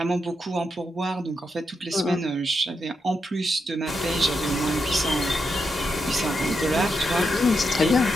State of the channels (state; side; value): normal; both; correlation 0.84